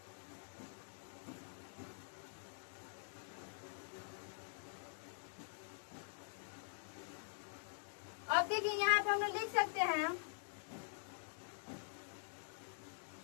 अब देखिए यहाँ पे हम लोग लिख सकते हैं,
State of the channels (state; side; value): silent; right; digital silence